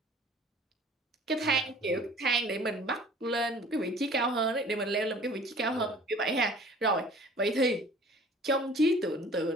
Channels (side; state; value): both; normal; correlation 0.49